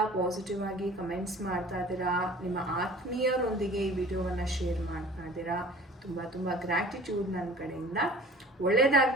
ಪಾಸಿಟಿವ್ ಆಗಿ ಕಮೆಂಟ್ಸ್ ಮಾಡ್ತಾ ಇದ್ದೀರಾ, ನಿಮ್ಮ ಆತ್ಮೀಯರೊಂದಿಗೆ ಈ ವಿಡಿಯೋವನ್ನು ಶೇರ್ ಮಾಡ್ತಾ ಇದ್ದೀರಾ. ತುಂಬ ಗ್ರ್ಯಾಟಿಟ್ಯೂಡ್ ನನ್ನ ಕಡೆಯಿಂದ.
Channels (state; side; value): normal; both; correlation 0.46